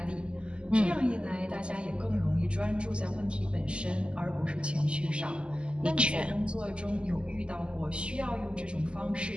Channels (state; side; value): late; left; 0.052 ms